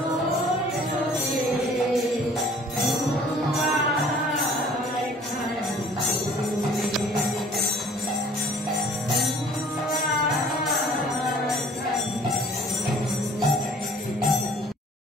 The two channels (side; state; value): both; normal; correlation 0.52